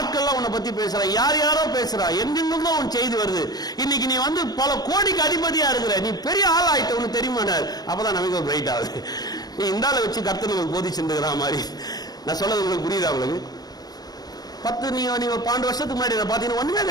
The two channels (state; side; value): late; right; 0.19 ms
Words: உன்னை பத்தி பேசுறா, யார் யாரோ பேசுறா, எங்கெங்கும் உன் செய்தி வருது. இன்னைக்கு நீ வந்து பல கோடிக்கு அதிபதியா இருக்கிற, நீ பெரிய ஆள் ஆயிட்ட, உனக்கு தெரியுமா? அப்பதான் நமக்கு ஒரு பிரைட் ஆகுது. நீ இந்தால வச்சு கர்த்தனுக்கு போதிச்சுருக்கிற மாதிரி. நான் சொல்றது உங்களுக்கு புரியுதா? உங்களுக்கு 10 நீங்க 12 வருஷத்துக்கு முன்னாடி பாத்தீங்கன்னா ஒண்ணுமே